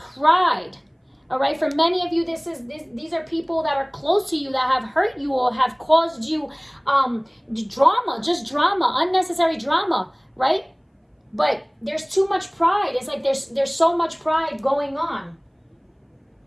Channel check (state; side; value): identical; both; correlation 1.00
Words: all right? For many of you, these are people that are close to you that have hurt you or have caused you drama, unnecessary drama, right? But there's too much pride. It's like there's so much pride going on.